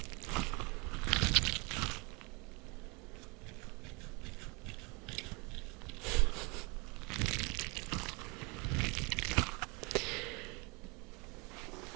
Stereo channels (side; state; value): left; quieter; 28.9 dB